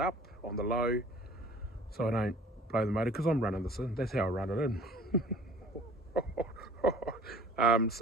on the low so I don't blow the motor, because I'm running this in. That's how I run it in.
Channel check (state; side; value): normal; both; correlation 0.48